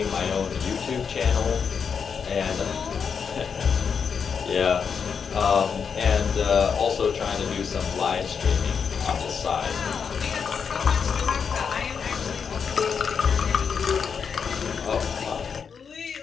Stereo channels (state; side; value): quieter; right; 6.4 dB